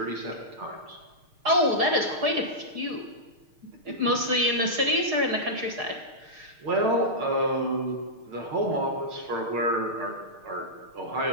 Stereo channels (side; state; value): left; late; 6.5 ms